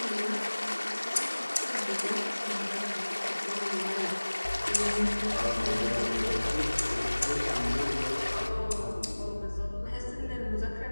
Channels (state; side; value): inverted; both; correlation -1.00